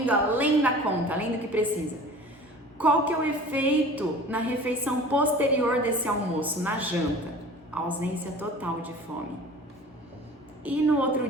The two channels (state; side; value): normal; both; correlation 0.42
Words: além da conta, além do que precisa. Qual que é o efeito na refeição posterior desse almoço, na janta? Ausência total de fome. E no outro